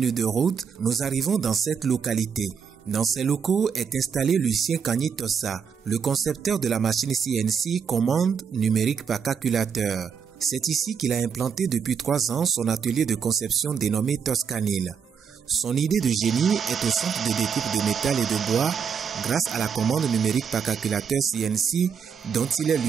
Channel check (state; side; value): quieter; left; 6.8 dB